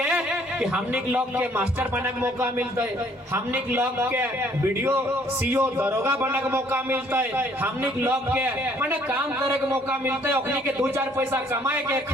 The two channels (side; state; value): both; normal; correlation 0.62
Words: कि हमनी के लोग के मास्टर बने के मौका मिलते हमनी के लोग के वीडियो सीओ दरोगा बने के मौका मिलते हमनी के लोग के माने काम करे के मौका मिलते ओखनी के 2-4 पैसा कमाए के